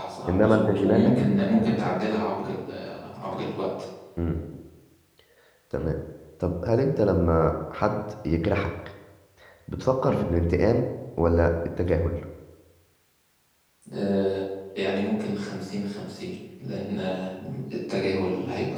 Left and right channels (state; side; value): identical; both; correlation 1.00